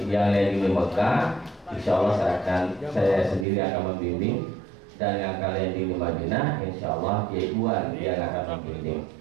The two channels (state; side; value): drops out; left; at 3.5 s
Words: di Mekah, insya Allah saya sendiri akan membimbing, dan yang akan landing di Madinah, insya Allah Kiai Iwan yang akan membimbing.